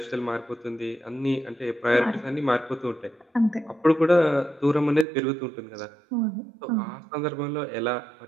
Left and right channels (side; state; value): left; drops out; at 5.1 s